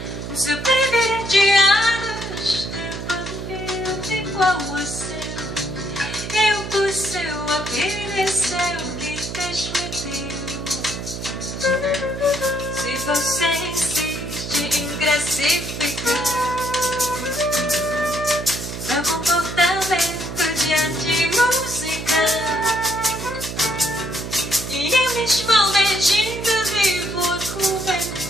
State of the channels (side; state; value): right; noise; hum, 7 dB below the sound